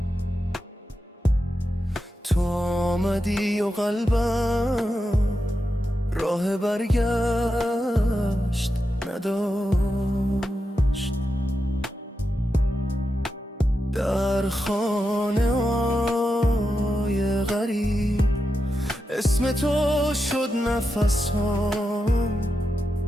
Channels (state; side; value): normal; both; correlation 0.88